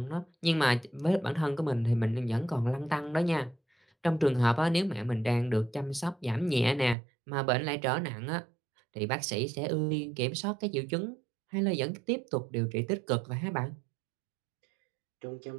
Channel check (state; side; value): drops out; left; at 7.0 s